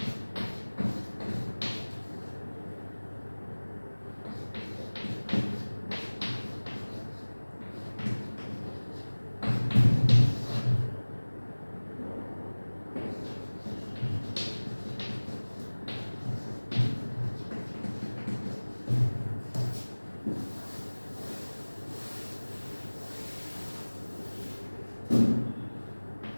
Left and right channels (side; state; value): both; inverted; correlation -1.00